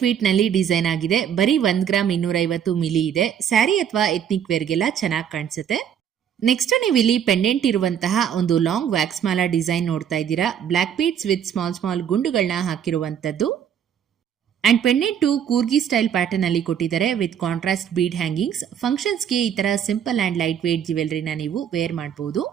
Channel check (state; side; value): quieter; left; 8.8 dB